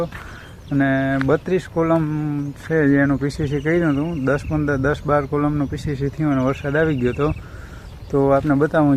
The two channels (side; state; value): both; identical; correlation 1.00